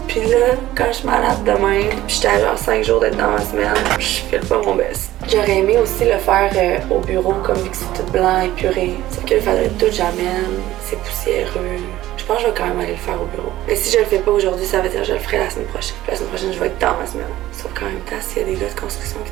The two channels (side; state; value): left; quieter; 15.1 dB